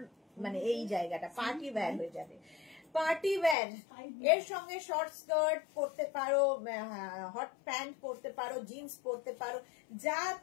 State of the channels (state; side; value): drops out; right; at 3.6 s